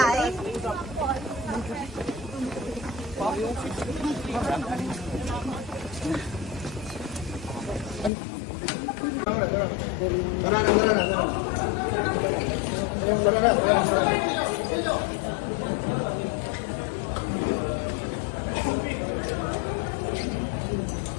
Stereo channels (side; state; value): right; drops out; at 8.1 s